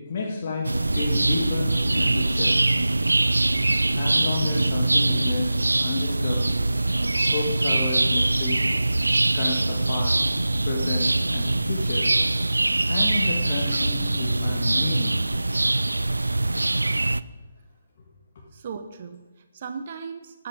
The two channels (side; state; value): both; inverted; correlation -0.95